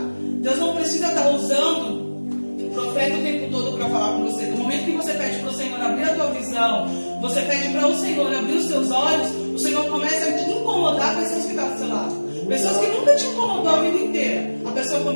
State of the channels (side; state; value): both; inverted; correlation -1.00